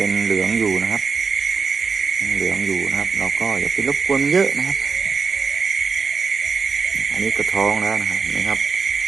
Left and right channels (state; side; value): quieter; left; 5.1 dB